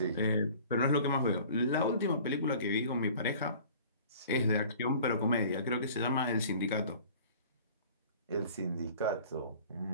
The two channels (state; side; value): inverted; both; correlation -0.47